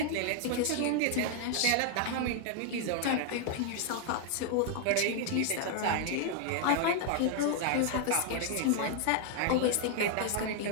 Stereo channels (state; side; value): different; both; correlation 0.00